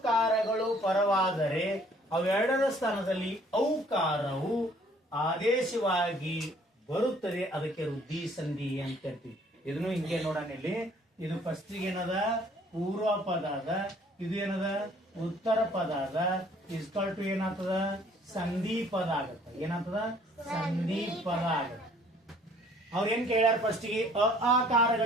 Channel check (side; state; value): both; normal; correlation 0.58